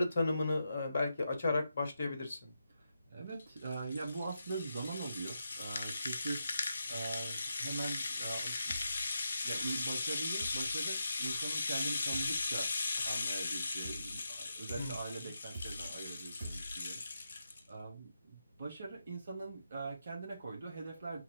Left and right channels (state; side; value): inverted; both; correlation -0.85